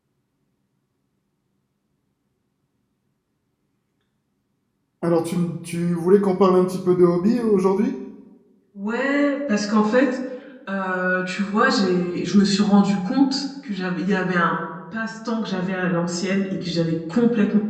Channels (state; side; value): identical; both; correlation 1.00